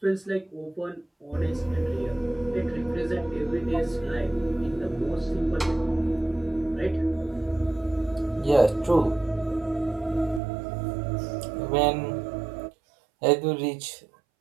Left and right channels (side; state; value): left; drops out; at 10.4 s